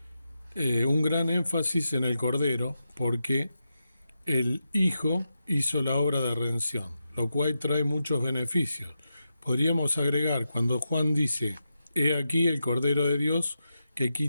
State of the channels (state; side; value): inverted; both; correlation -0.88